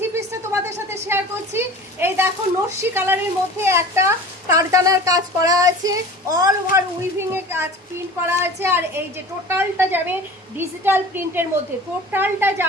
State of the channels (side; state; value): both; normal; correlation 0.39